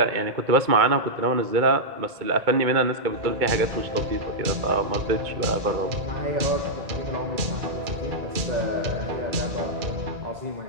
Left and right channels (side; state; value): left; late; 2.4 ms